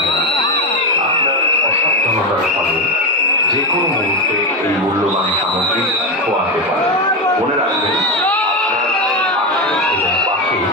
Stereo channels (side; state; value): both; normal; correlation 0.13